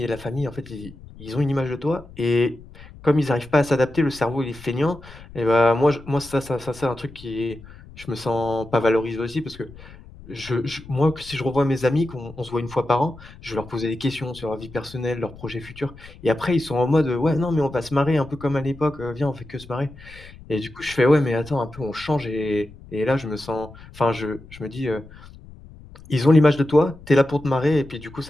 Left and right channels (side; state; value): left; noise; rumble, 19 dB below the sound